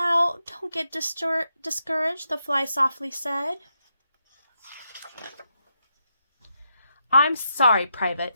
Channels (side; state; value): both; inverted; correlation -0.83